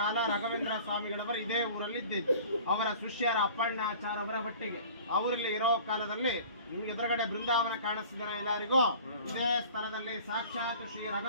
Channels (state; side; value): inverted; both; correlation -0.45